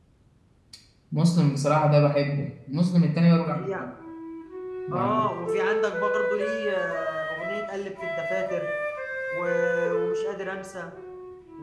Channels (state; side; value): identical; both; correlation 1.00